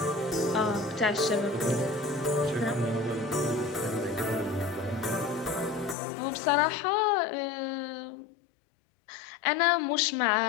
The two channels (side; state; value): right; drops out; at 6.0 s